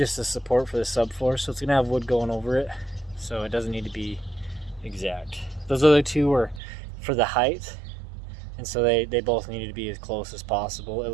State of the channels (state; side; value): drops out; left; at 6.6 s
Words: the support for the subfloor, so it's gonna have wood going over it, so it doesn't need to be exact. Those other two were for the height, and so they both needed to be as close as possible, at